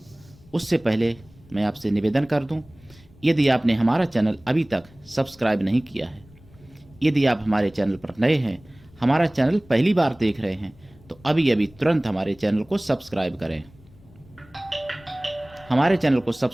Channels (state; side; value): noise; left; rumble, 26 dB below the sound